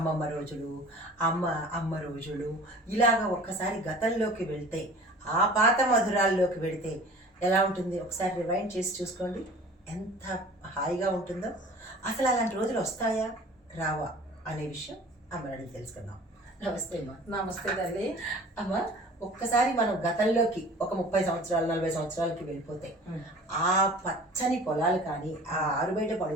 రోజులు, అమ్మ రోజులు ఇలాగ ఒక్కసారి గతంలోకి వెళ్తే, ఆ పాత మధురాల్లోకి వెళితే ఎలా ఉంటుంది? ఒకసారి రివైండ్ చేసి చూసుకోండి. ఎంత హాయిగా ఉంటుందో. అసలు అలాంటి రోజులు వస్తాయా? రావా? అనే విషయం అమ్మని అడిగి తెలుసుకుందాం. నమస్తే అమ్మ. నమస్తే తల్లి. అమ్మ, ఒక్కసారి మనం గతంలోకి ఒక 30 సంవత్సరాలు 40 సంవత్సరాలకి వెళ్ళిపోతే, ఆ పచ్చని పొలాలు కానీ, ఆ ఆరుబయట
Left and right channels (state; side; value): normal; both; correlation 0.45